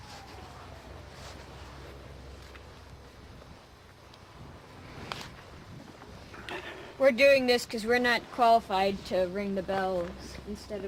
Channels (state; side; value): identical; both; correlation 1.00